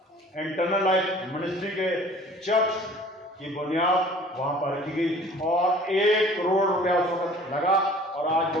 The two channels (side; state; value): both; normal; correlation 0.49